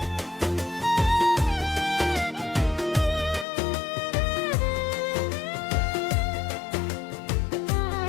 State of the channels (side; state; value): right; drops out; at 3.5 s